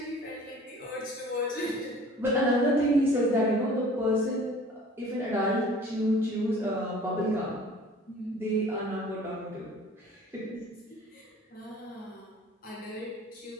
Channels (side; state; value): both; normal; correlation 0.48